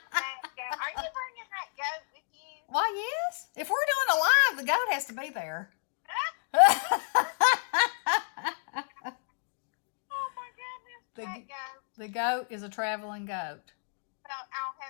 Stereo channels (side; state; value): right; silent; digital silence